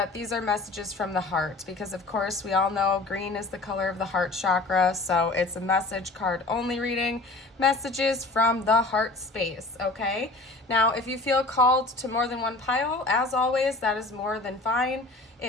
these are messages from the heart, because of course we all know green is the color of the heart chakra, so it's a message card only reading, messages from the heart space, okay? Now, if you feel called to more than one pile, as always, that is more than fine.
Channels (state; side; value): quieter; right; 3.1 dB